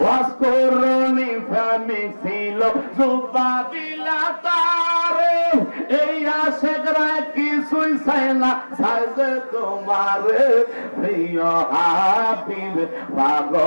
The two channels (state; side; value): inverted; both; correlation -1.00